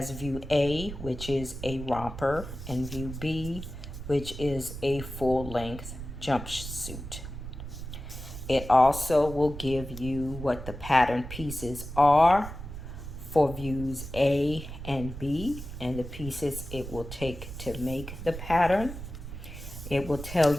view A, which is a romper, and view B, which is a full-length jumpsuit. It also will give you what the pattern pieces are for views A and B, and the pieces it will take to make the pattern. It will tell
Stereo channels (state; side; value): noise; right; rumble, 10 dB below the sound